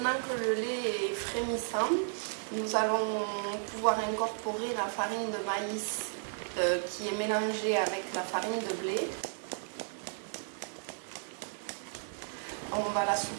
que le lait est frémissant, nous allons pouvoir incorporer la farine de maïs qui est mélangée avec la farine de blé. On va la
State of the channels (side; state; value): left; silent; digital silence